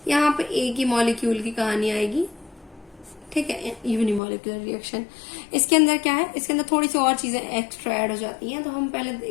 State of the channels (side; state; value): right; drops out; at 4.2 s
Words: यहाँ पे एक ही मॉलिक्यूल की कहानी आएगी, ठीक है, यूनिमोलिक्यूलर रिएक्शन। इसके अंदर क्या है, इसके अंदर थोड़ी सी और चीजें एक्स्ट्रा ऐड हो जाती हैं, तो हम पहले